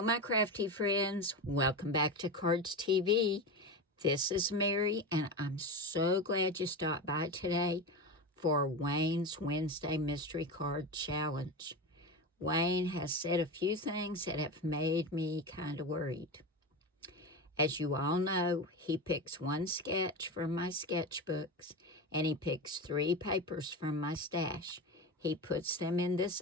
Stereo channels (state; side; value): normal; both; correlation 0.22